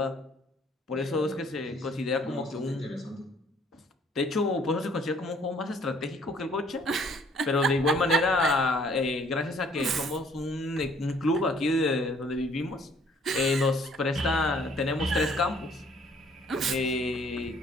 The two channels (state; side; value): normal; both; correlation 0.60